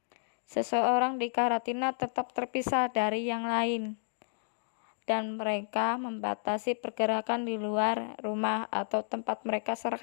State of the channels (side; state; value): right; silent; digital silence